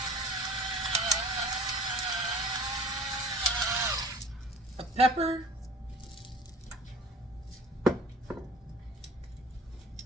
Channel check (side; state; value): both; normal; correlation 0.45